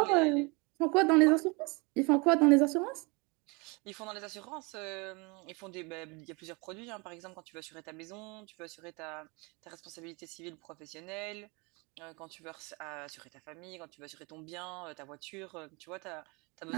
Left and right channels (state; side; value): quieter; left; 28.7 dB